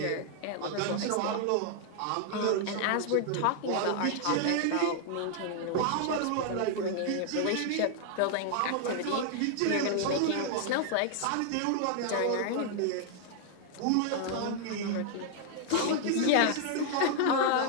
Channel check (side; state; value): both; different; correlation 0.00